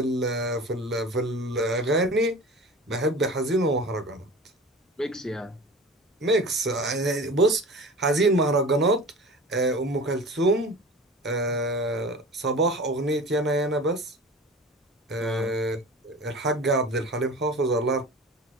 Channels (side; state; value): both; normal; correlation 0.37